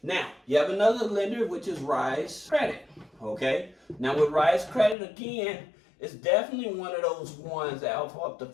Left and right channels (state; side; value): drops out; right; at 5.0 s